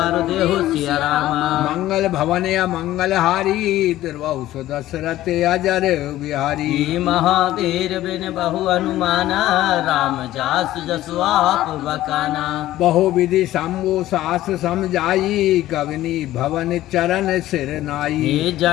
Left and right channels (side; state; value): right; quieter; 14.7 dB